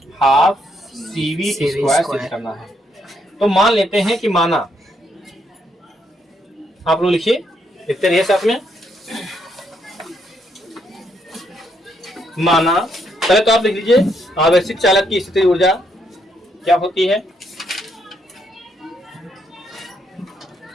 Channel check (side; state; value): both; normal; correlation 0.75